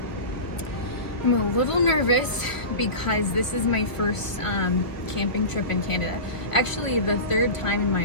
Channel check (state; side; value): late; right; 1.3 ms